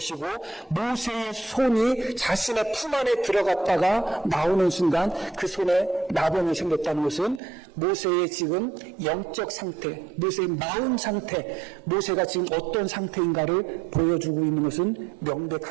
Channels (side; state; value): left; drops out; at 7.4 s